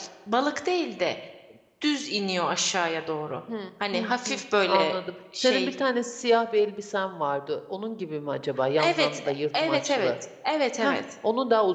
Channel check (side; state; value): both; identical; correlation 1.00